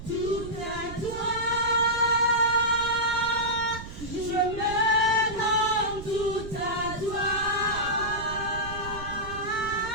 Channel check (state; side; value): noise; right; rumble, 11 dB below the sound